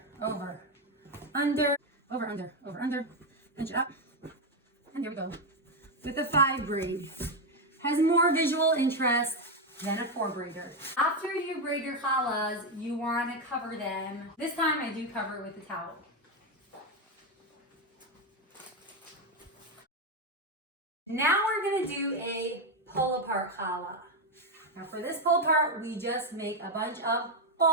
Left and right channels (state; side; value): normal; both; correlation 0.07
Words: over, under, over, under, over, under. Pinch it up. And there we go. With the 5 braid. Has more visual interest than a 4 braider. After you braid your challahs, you want to cover them. This time I do cover it with a towel. Now we're going to do a pull apart challah. Now for this pull apart, we just make a bunch of